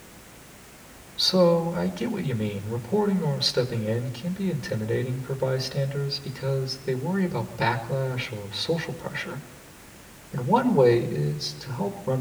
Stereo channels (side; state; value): both; identical; correlation 1.00